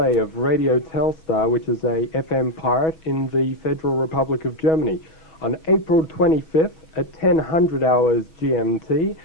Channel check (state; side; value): late; right; 6.2 ms